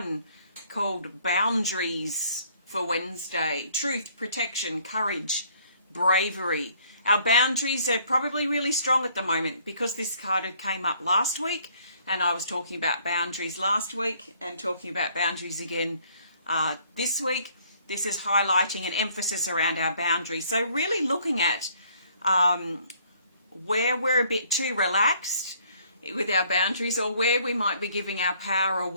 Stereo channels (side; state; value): both; inverted; correlation -0.62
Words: called Boundaries for Wednesday. Truth, protection, courage, bravery. Our boundaries are probably really strong at the moment because this card came up last week, and I was talking about boundaries last week and talking about boundaries again this week. This is highlighting an emphasis around our boundaries. So really looking at where we're a bit too relaxed with our boundaries, or where we might be giving our power